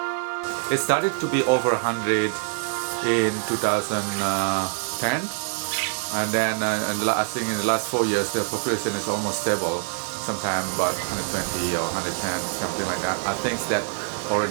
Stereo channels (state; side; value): silent; left; digital silence